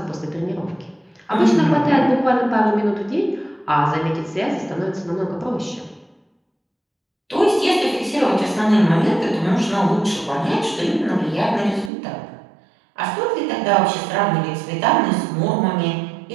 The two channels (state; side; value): drops out; left; at 11.9 s